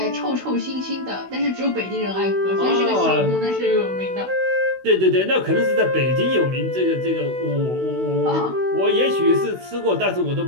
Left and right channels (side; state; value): left; late; 16 ms